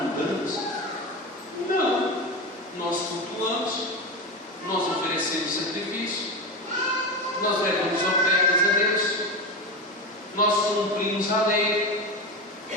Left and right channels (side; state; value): both; normal; correlation 0.20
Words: mundanos? Não. Nós cultuamos, nós oferecemos sacrifício, nós levamos ofertas a Deus, nós cumprimos a lei.